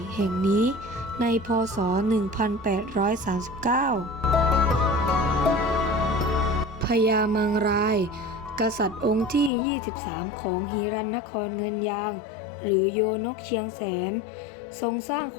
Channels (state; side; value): drops out; right; at 9.5 s